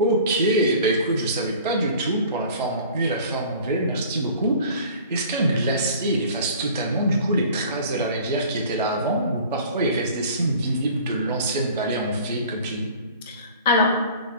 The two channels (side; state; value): both; inverted; correlation -0.46